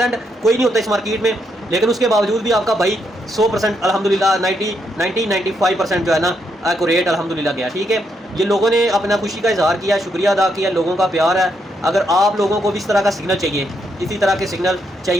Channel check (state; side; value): normal; both; correlation 0.78